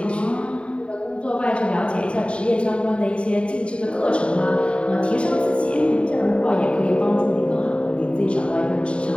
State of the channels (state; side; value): late; right; 0.058 ms